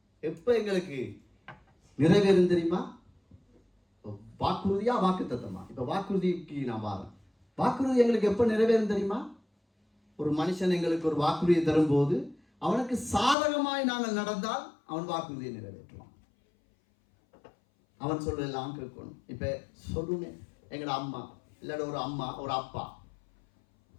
எப்ப எங்களுக்கு நிறைவேறும் தெரியுமா? வாக்குறுதியா வாக்கு தத்தமா? இப்ப வாக்குறுதிக்கு நான் வரேன். வாக்குறுதி எங்களுக்கு எப்ப நிறைவேறும் தெரியுமா? ஒரு மனுஷன் எங்களுக்கு ஒரு வாக்குறுதியை தரும்போது அவனுக்கு சாதகமாய் நாங்கள் நடந்தால் அவன் வாக்குறுதியை நிறைவேற்றுவான். அவன் சொல்றதெல்லாம் கேட்கணும். இப்ப சொல்லுங்க, எங்கட அம்மா இல்லாட ஒரு அம்மா ஒரு அப்பா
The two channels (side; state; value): right; drops out; at 13.4 s